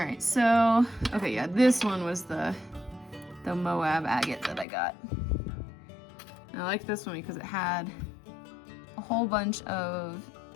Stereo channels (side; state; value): right; drops out; at 4.7 s